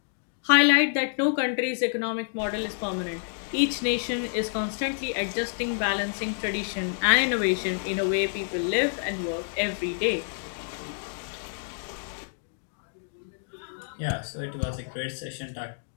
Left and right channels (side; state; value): right; silent; digital silence